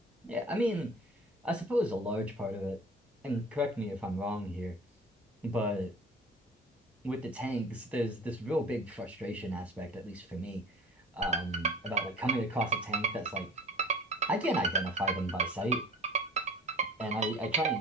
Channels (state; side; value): normal; both; correlation 0.43